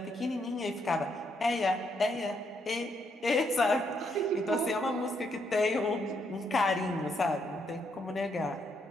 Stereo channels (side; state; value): both; normal; correlation 0.75